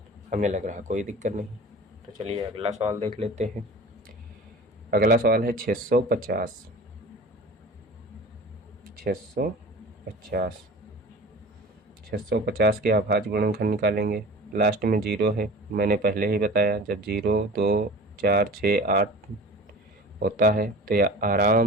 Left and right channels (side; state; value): both; normal; correlation 0.39